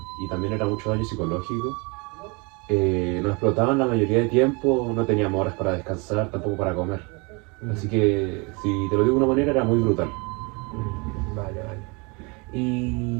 y también era mucho daño psicológico. Nos explotaban la mayoría de tiempo, no teníamos horas para descansar, tampoco para comer. Así que, si te lo digo de una manera, era muy brutal. Vale.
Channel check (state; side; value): quieter; left; 29.6 dB